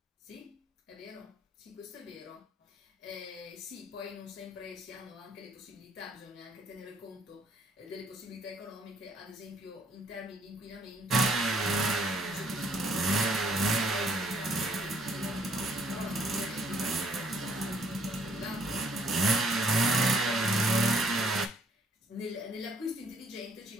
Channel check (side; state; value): both; normal; correlation 0.65